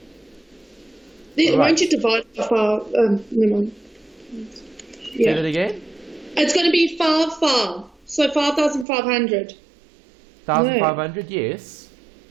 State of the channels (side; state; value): left; drops out; at 8.8 s